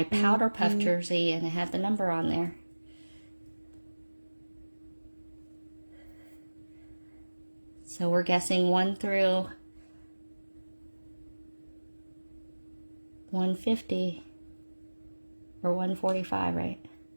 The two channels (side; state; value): both; inverted; correlation -1.00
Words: powder puff jersey, and it had the number on there. So we're guessing 1 through 150 or 145, right?